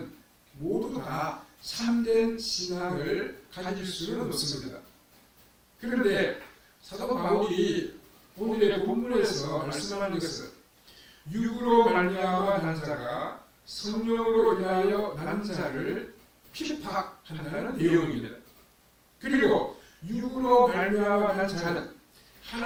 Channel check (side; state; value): both; identical; correlation 1.00